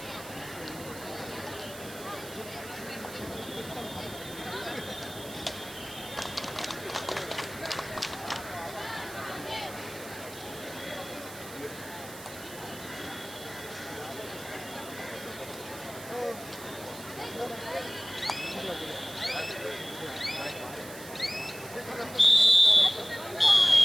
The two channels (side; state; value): right; noise; hiss, 14 dB below the sound